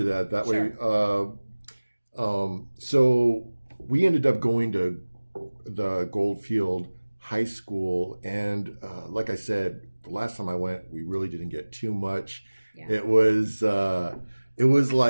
that. That Sure. way. So we ended up going to the Goldfield High School, and like I said, the last time I went, we really didn't get too much. Yeah. It was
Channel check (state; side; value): inverted; both; correlation -1.00